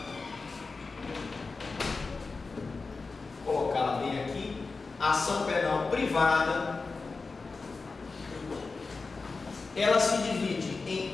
vou colocá-la bem aqui. A ação penal privada, ela se divide em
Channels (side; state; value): right; quieter; 4.1 dB